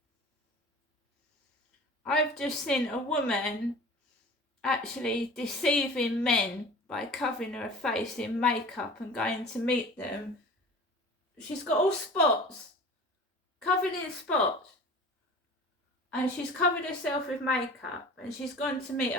I've just seen a woman actually deceiving men by covering her face in makeup and going to meet them. She's got all spots, covered in spots, and she's covered herself with makeup and she's gone to meet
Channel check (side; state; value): both; normal; correlation 0.40